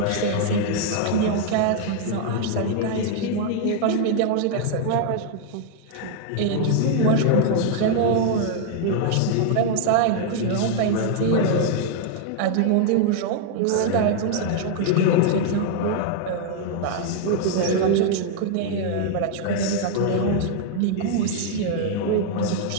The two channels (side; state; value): both; different; correlation 0.00